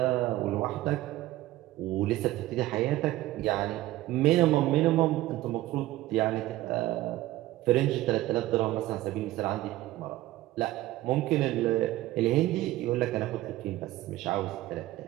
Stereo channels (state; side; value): quieter; left; 16.2 dB